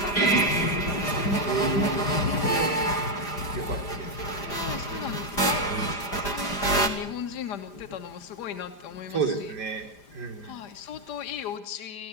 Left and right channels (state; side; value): late; right; 5.0 ms